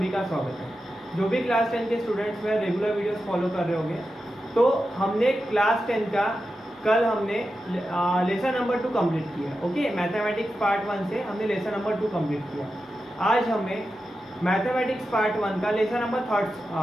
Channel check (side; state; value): both; normal; correlation 0.90